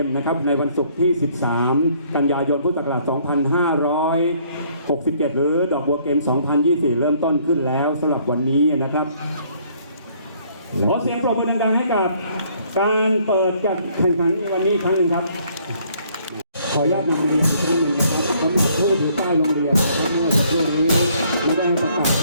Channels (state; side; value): inverted; both; correlation -0.64